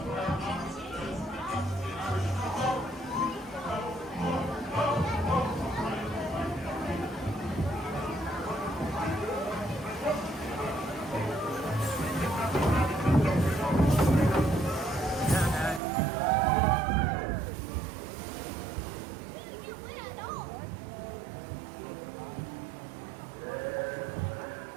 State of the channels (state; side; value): drops out; left; at 15.8 s